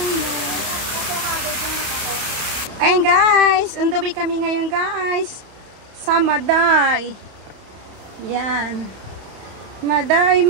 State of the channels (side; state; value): left; late; 31 ms